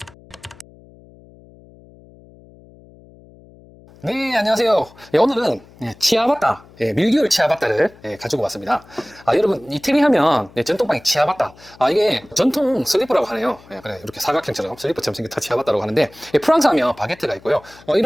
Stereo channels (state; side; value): noise; left; hum, 24 dB below the sound